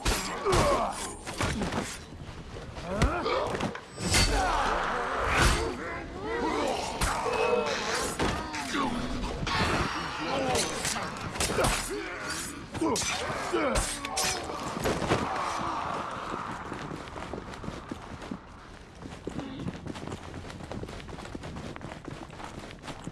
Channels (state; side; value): identical; both; correlation 1.00